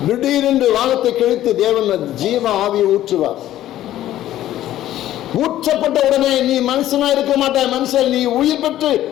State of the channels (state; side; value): quieter; right; 13.3 dB